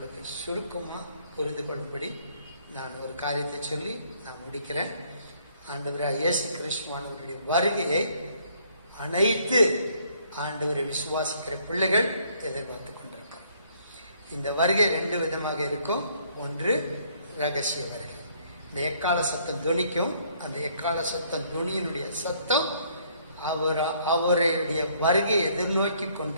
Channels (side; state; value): both; inverted; correlation -0.65